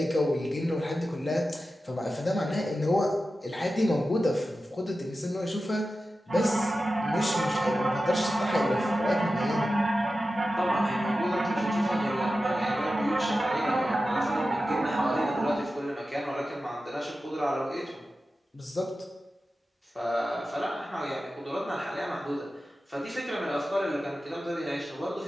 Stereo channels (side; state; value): both; normal; correlation 0.93